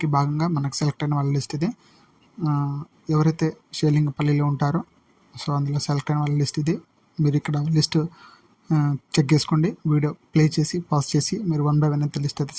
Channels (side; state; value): both; identical; correlation 1.00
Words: భాగంగా మనకు సెలెక్ట్ అయిన వాళ్ళ లిస్ట్ ఇది. ఎవరైతే షేర్లింగంపల్లిలో ఉంటారో సో అందులో సెలెక్ట్ అయిన వాళ్ళ లిస్ట్ ఇది. మీరు ఇక్కడ లిస్ట్ చెక్ చేసుకోండి, వీడియో ప్లే చేసి పాజ్ చేసి మీరు 1 by 1 అయితే లిస్ట్ అయితే